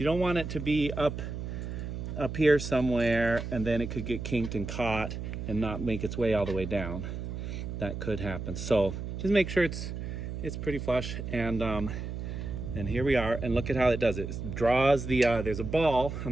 don't want it to be up up here somewhere, and then it could get kinked and caught and not make its way all the way down. That could happen. So just make sure it's pretty flush. And here we are, and look at how it does it. It draws the there's a ball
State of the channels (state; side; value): noise; right; hum, 6 dB below the sound